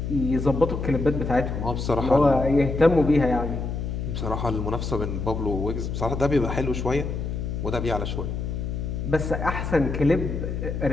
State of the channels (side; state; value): left; noise; hum, 4 dB below the sound